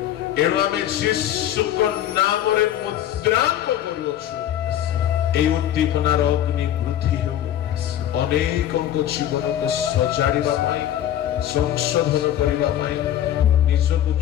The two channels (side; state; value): right; quieter; 11.5 dB